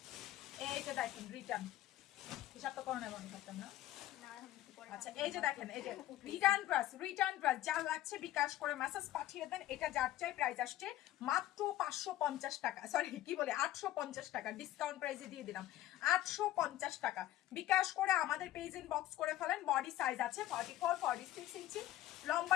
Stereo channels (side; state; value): right; quieter; 14.2 dB